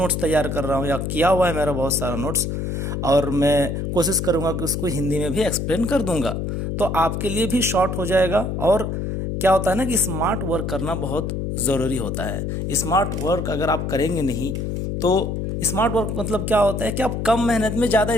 तैयार कर रहा हूँ या किया हुआ है मेरा बहुत सारा नोट्स, और मैं कोशिश करूँगा कि उसको हिंदी में भी एक्सप्लेन कर दूंगा, तो आपके लिए भी शॉर्ट हो जाएगा। और क्या होता है ना कि स्मार्ट वर्क करना बहुत ज़रूरी होता है। स्मार्ट वर्क अगर आप करेंगे नहीं तो स्मार्ट वर्क मतलब क्या होता है कि आप कम मेहनत में ज़्यादा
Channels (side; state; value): left; noise; hum, 2 dB below the sound